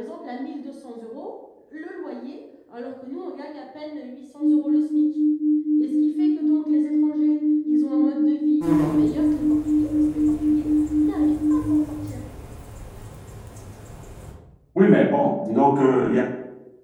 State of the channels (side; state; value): both; identical; correlation 1.00